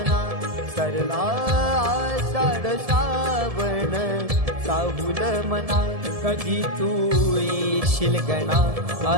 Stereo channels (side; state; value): left; late; 1.7 ms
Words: सरला आषाढ श्रावण साहुल मना कधी तू येशील गणा